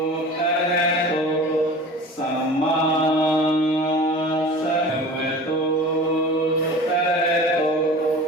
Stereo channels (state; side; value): normal; both; correlation 0.38